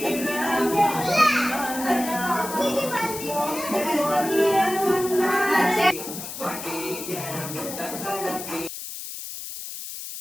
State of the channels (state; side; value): noise; left; hiss, 9 dB below the sound